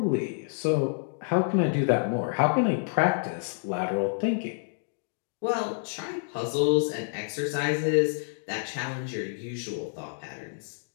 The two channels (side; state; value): right; silent; digital silence